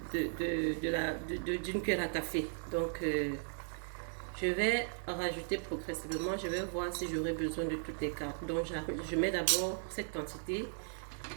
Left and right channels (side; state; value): left; silent; 53 dB below the other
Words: cuillère à café. Donc, je vais rajouter progressivement. Je vais voir si j'aurai besoin de toutes les cartes. Donc, je mets d'abord cette quantité.